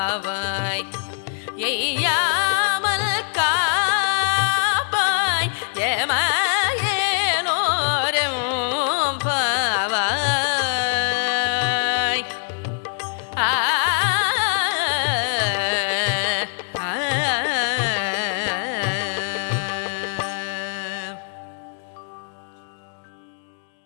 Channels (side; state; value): right; silent; 64 dB below the other